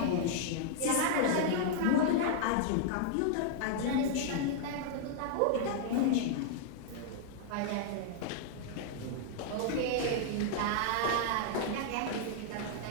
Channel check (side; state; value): both; different; correlation -0.01